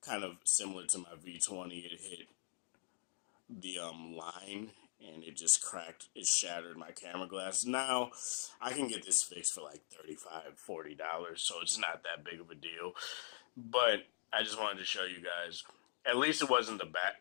kind of similar to my V20. It hit the line and it just cracked. It shattered my camera glass. Now I can get this fixed for like $35, $40, so it's not that big of a deal. But I just wanted to show you guys. At least it wasn't the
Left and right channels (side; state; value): right; silent; digital silence